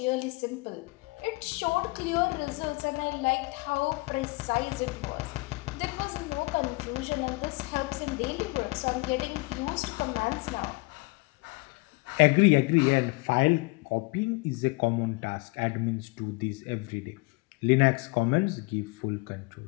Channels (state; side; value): quieter; right; 26.0 dB